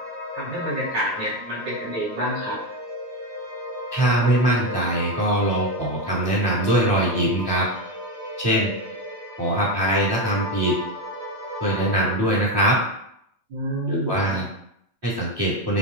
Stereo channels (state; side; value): late; left; 8.8 ms